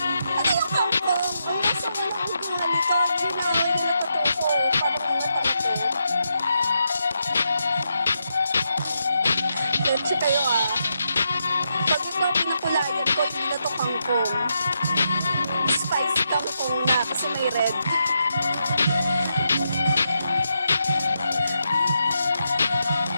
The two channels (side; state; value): both; inverted; correlation -0.83